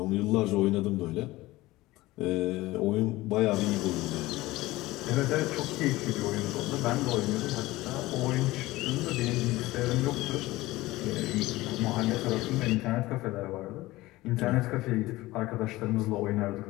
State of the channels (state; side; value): quieter; right; 18.7 dB